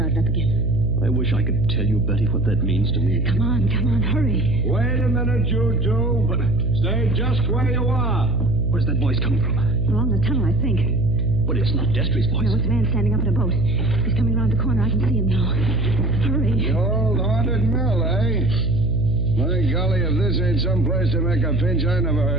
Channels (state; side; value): noise; right; hum, 1 dB below the sound